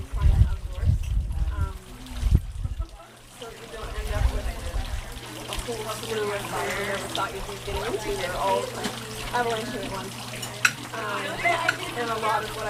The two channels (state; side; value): identical; both; correlation 1.00